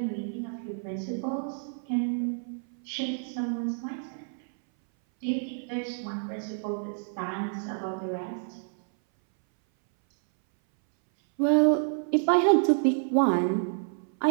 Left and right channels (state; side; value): silent; left; 59 dB below the other